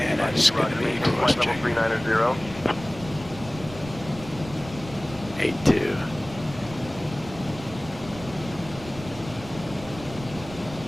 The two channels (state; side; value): noise; right; rumble, 15 dB below the sound